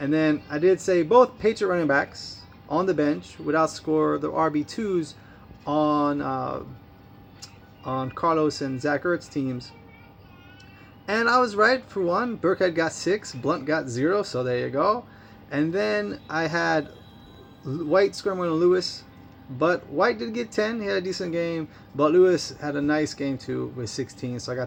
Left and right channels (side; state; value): both; identical; correlation 1.00